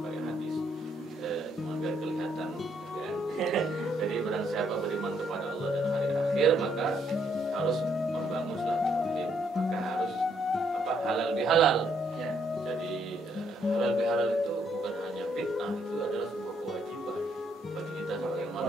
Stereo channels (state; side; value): normal; both; correlation 0.72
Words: pakai hadis, cuma biar kelihatan kan. Jadi barang siapa beriman kepada Allah dan hari akhir, maka harus membangun silaturahim, maka harus halal bihalal. Jadi halal bihalal itu bukan hanya bid'ah, itu adalah sebuah kewajiban bagi kita sebagai